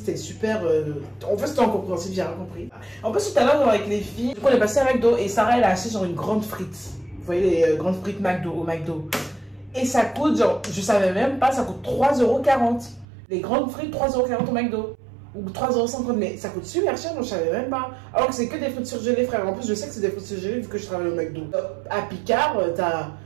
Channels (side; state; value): left; drops out; at 13.1 s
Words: super... En fait c'était incompréhensible, j'ai rien compris. En plus tout à l'heure avec les filles, du coup on est passé à McDo et Sarah elle a acheté genre une grande frite. Vous voyez les grandes frites McDo au McDo. Et ça coûte genre, je savais même pas, ça coûte 3,40 €. Les grandes frites 3,40 € au McDo. Ou 3,50 €, mais ça coûte super cher, donc je savais même pas. Alors que c'est que des frites surgelées, frère. En plus, je sais que c'est des frites surgelées vu que je travaille au McDo. À Picard, t'as